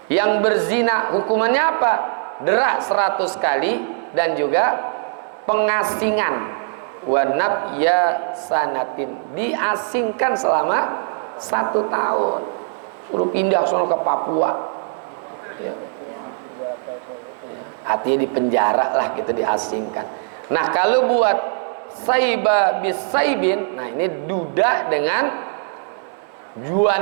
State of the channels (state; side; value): silent; left; digital silence